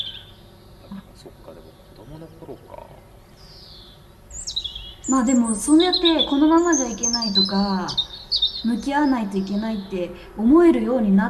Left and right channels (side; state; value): both; identical; correlation 1.00